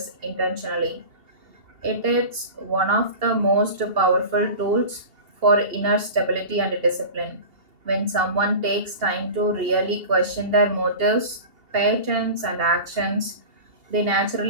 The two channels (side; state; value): left; late; 2.8 ms